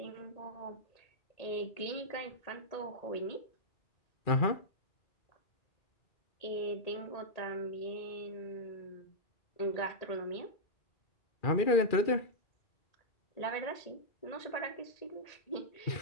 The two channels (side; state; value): right; late; 2.4 ms